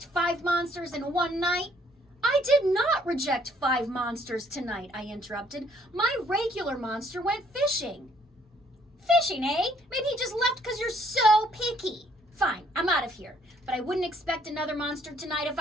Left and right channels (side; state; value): both; normal; correlation 0.65